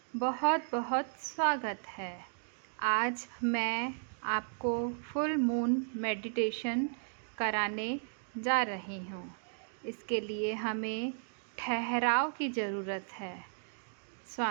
बहुत बहुत स्वागत है। आज मैं आपको फुल मून मेडिटेशन कराने जा रही हूँ। इसके लिए हमें ठहराव की ज़रूरत है,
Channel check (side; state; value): left; silent; digital silence